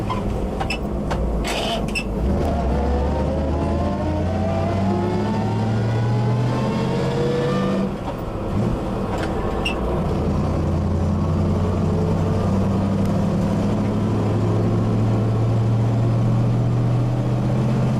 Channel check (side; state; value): both; identical; correlation 1.00